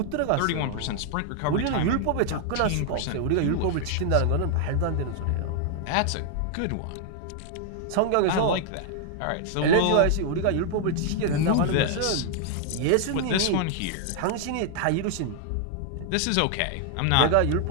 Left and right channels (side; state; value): both; different; correlation 0.00